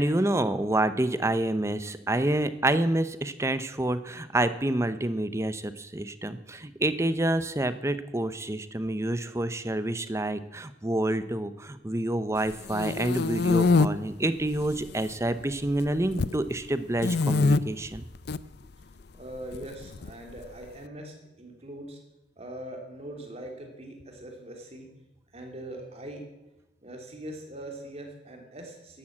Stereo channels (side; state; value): both; normal; correlation 0.72